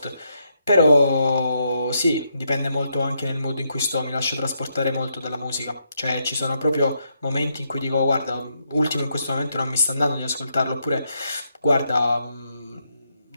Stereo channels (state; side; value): inverted; both; correlation -0.79